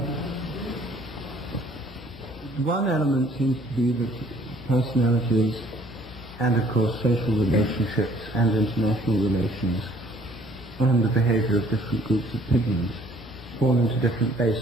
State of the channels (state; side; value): normal; both; correlation 0.59